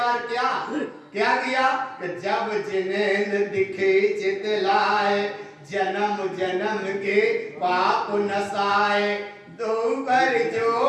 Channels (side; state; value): both; identical; correlation 1.00